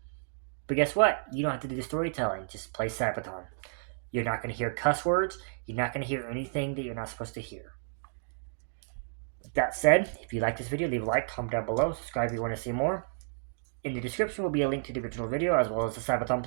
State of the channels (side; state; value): left; silent; digital silence